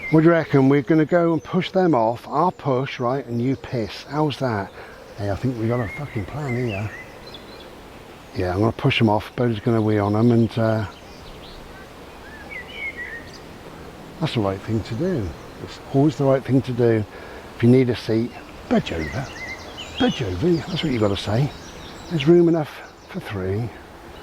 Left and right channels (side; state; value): both; identical; correlation 1.00